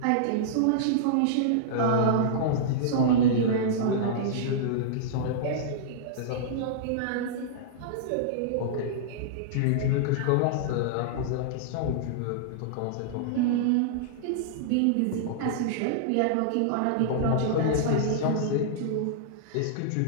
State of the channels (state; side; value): different; both; correlation -0.02